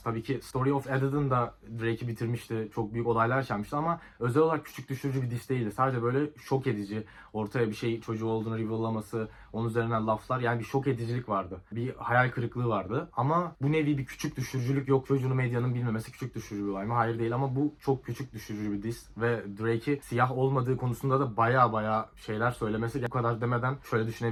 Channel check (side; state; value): both; identical; correlation 1.00